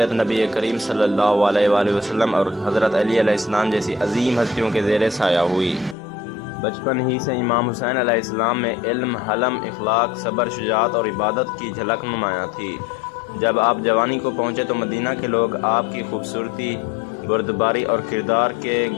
نبی کریم صلی اللہ علیہ وآلہ وسلم اور حضرت علی علیہ السلام جیسی عظیم ہستیوں کے زیر سایہ ہوئی۔ بچپن ہی سے امام حسین علیہ السلام میں علم، حلم، اخلاق، صبر، شجاعت اور عبادت کی جھلک نمایاں تھی۔ جب آپ جوانی کو پہنچے تو مدینہ کے لوگ آپ کی خوبصورتی، بردباری اور کردار کے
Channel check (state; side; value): drops out; right; at 6.0 s